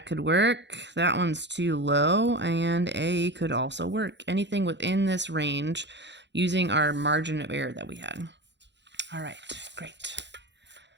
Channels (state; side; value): late; left; 0.52 ms